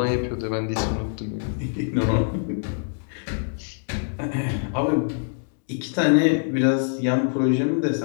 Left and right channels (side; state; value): right; silent; digital silence